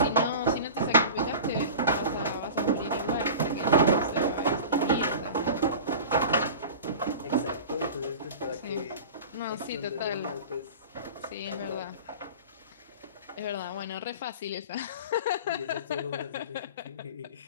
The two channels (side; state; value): both; inverted; correlation -0.35